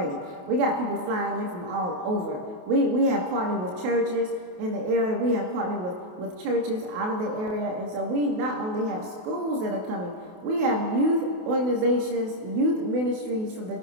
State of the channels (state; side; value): late; left; 28 ms